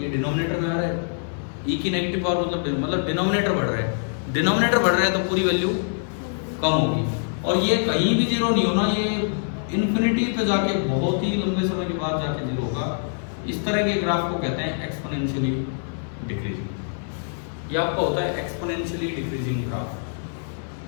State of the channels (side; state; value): right; silent; digital silence